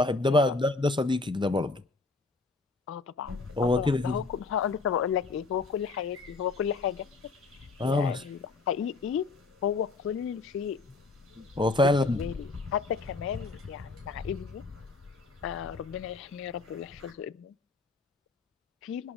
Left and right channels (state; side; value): quieter; right; 3.7 dB